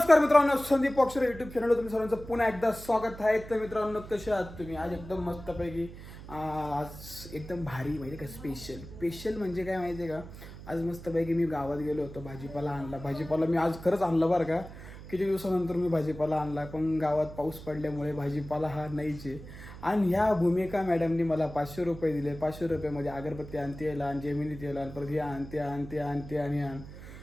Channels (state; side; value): noise; right; hum, 14 dB below the sound